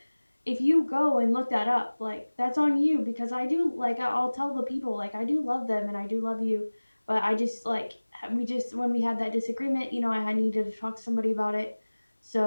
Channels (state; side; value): inverted; both; correlation -1.00